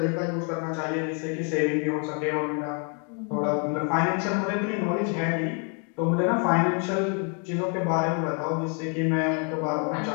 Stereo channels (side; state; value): right; quieter; 39.1 dB